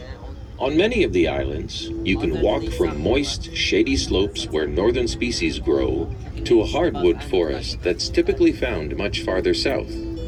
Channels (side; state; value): both; identical; correlation 1.00